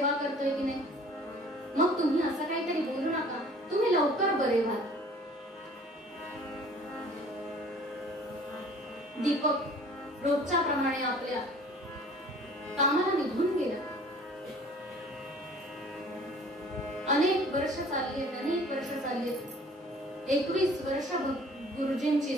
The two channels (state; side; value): normal; both; correlation 0.51